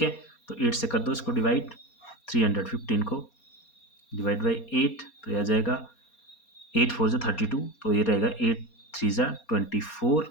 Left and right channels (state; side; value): late; right; 4.2 ms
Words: है, तो 8 से कर दो इसको डिवाइड, 315 को डिवाइड बाई 8, तो यह आ जाएगा 8 4 जा 32, तो ये रहेगा 8 3 जा 24,